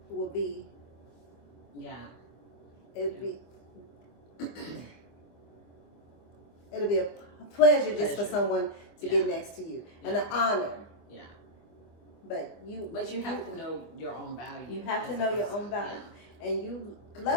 will be Yeah. it'll be a pleasure just for Pleasure. someone to Yeah. get next to you, and an honor. Yeah. But you have to know your own value. You have to as know a your person. own value, and you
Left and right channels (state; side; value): late; right; 24 ms